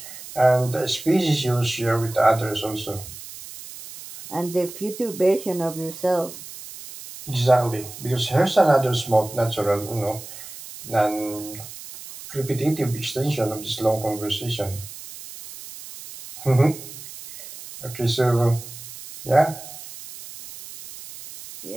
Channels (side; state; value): right; noise; hiss, 14 dB below the sound